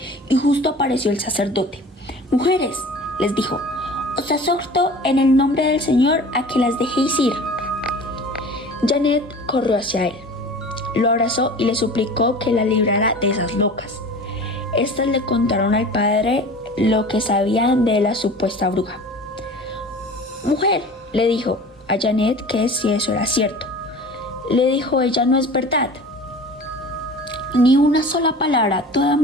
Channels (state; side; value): normal; both; correlation 0.40